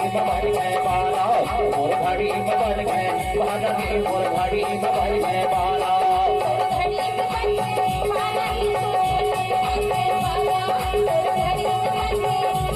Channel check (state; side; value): identical; both; correlation 1.00